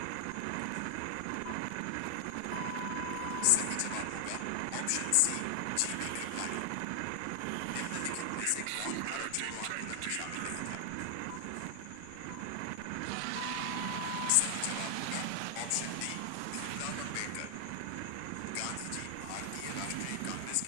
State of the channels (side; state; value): both; different; correlation 0.00